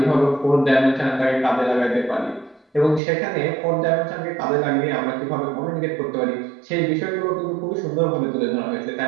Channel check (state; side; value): drops out; left; at 3.0 s